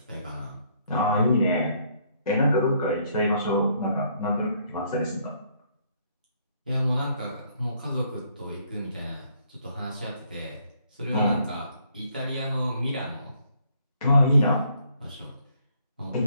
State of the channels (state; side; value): inverted; both; correlation -0.67